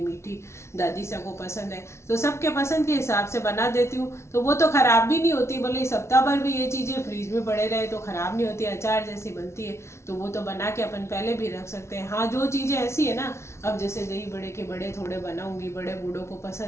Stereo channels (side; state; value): right; late; 0.13 ms